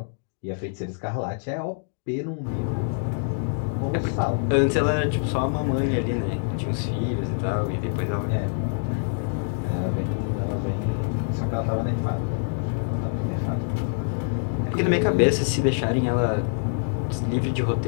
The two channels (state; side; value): silent; right; digital silence